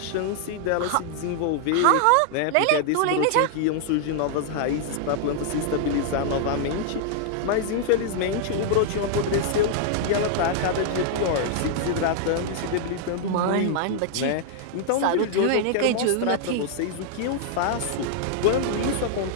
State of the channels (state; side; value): different; both; correlation -0.01